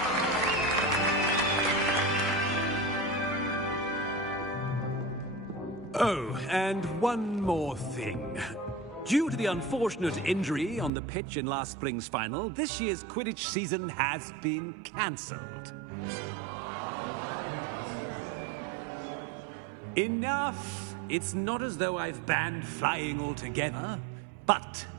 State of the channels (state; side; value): drops out; left; at 10.9 s